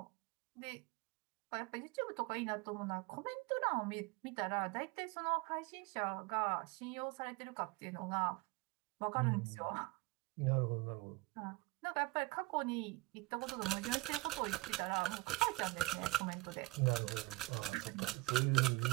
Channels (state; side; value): quieter; left; 23.6 dB